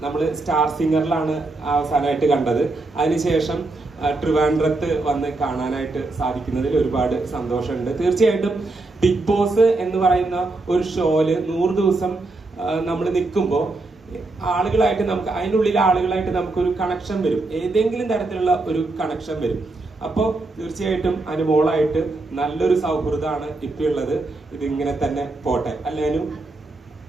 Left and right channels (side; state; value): left; quieter; 3.2 dB